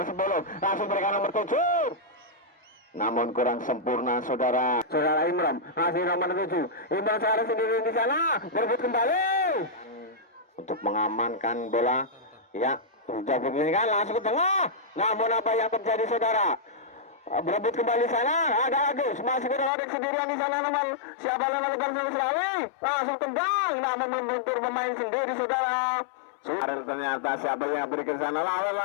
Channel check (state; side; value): drops out; right; at 19.7 s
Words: 10 langsung berikan nomor 7. Namun kurang sempurna saudara Imram. Masih nomor 7. Imram Sarah sendiri di sana. Berebut kembali untuk mengamankan bola. Ya, sudah begini kan langsung ke tengah. Namun apa yang terjadi saudara? Berebut kembali sana, ada Agus, masih ada sendirian di sana nomor siapa nomor Selawi, langsung tendang, namun membentur pemain sendiri saudara. Ternyata siapa yang berikan sana